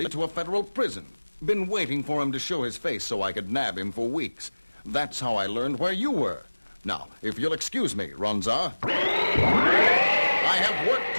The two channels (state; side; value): inverted; both; correlation -1.00